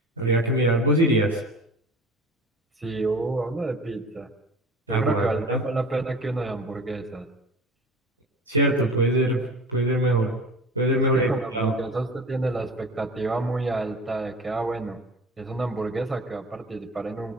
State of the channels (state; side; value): normal; both; correlation 0.38